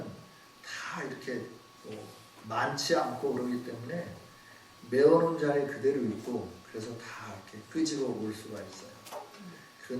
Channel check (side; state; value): both; identical; correlation 1.00